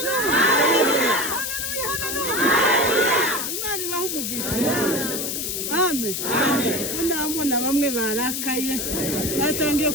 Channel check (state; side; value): noise; left; hiss, 2 dB below the sound